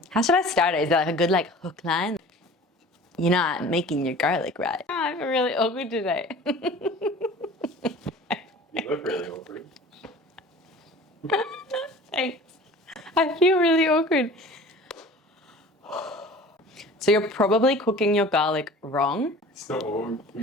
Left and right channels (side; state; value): both; normal; correlation 0.43